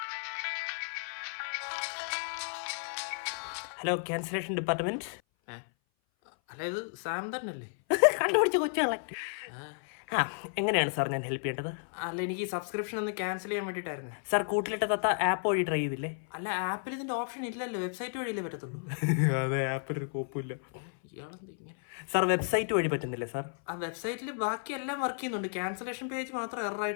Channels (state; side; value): silent; right; 56 dB below the other